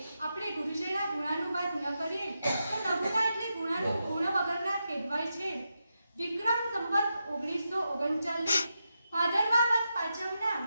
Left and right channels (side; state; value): both; inverted; correlation -0.87